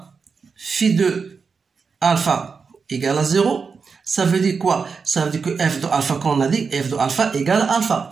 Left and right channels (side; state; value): left; quieter; 5.3 dB